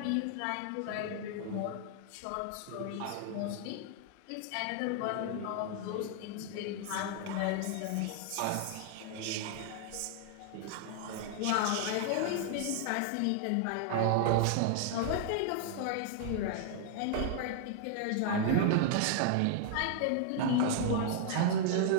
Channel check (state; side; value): different; both; correlation 0.00